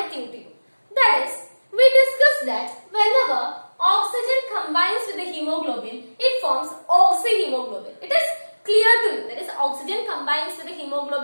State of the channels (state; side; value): inverted; both; correlation -1.00